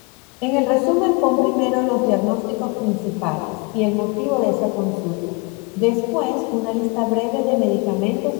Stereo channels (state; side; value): quieter; right; 29.4 dB